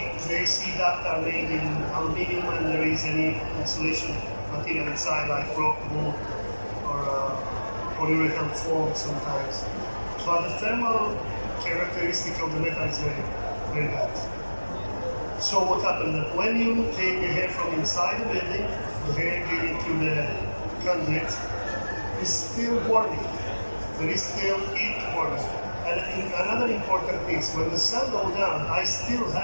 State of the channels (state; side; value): inverted; both; correlation -1.00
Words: the AC duct are made in aluminum and there is any insulation material inside like rock wool or polyurethane foam sometimes. But the thermal characteristic of the metal is very, very bad. So what happens that when you take the air from inside the building, the air getting to the conduit is still warming. There is still heat warming. And another important thing is when the sun goes down, I still